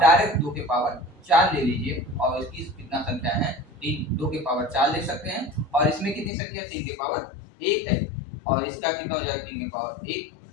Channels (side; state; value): right; drops out; at 6.3 s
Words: डायरेक्ट 2 के पावर 4 ले लीजिए, और इसकी कितना संख्या है? 3, 2 के पावर 4 ले सकते हैं, और इसमें कितनी संख्या? 3 के पावर 1 है, और इसका कितना हो जाएगा? 3 के पावर 1।